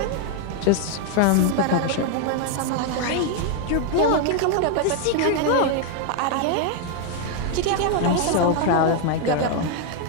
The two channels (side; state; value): both; different; correlation 0.01